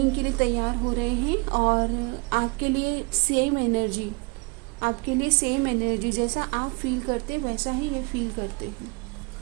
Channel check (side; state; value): left; quieter; 30.2 dB